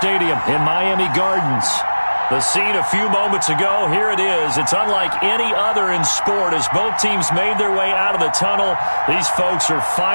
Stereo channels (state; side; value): inverted; both; correlation -1.00